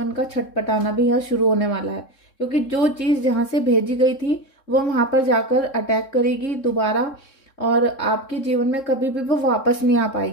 का छटपटाना भी यहाँ शुरू होने वाला है, क्योंकि जो चीज जहां से भेजी गई थी वो वहां पर जाकर अटैक करेगी दोबारा, और आपके जीवन में कभी भी वो वापस नहीं आ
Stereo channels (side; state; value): right; late; 3.7 ms